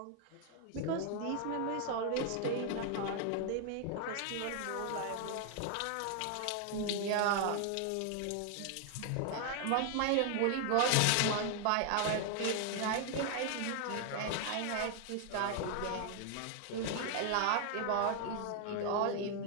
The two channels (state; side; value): different; both; correlation 0.00